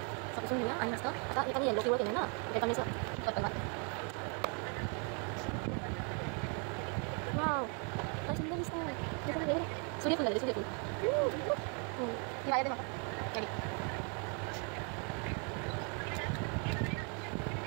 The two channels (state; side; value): quieter; left; 37.3 dB